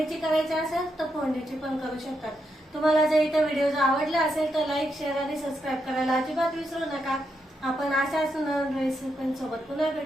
करायची असेल तर फोडणीची पण करू शकतात. तुम्हाला जर इथं व्हिडिओ जर आवडला असेल तर लाईक, शेअर आणि सबस्क्राईब करायला अजिबात विसरू नका. आपण अशाच रेसिपीसोबत पुन्हा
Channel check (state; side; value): normal; both; correlation 0.82